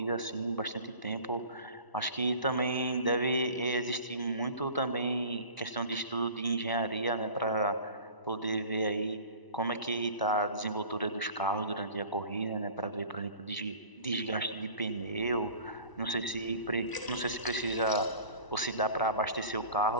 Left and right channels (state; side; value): late; right; 1.0 ms